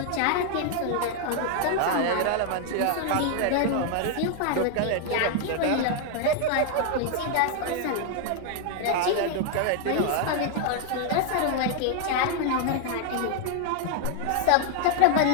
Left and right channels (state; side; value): different; both; correlation 0.00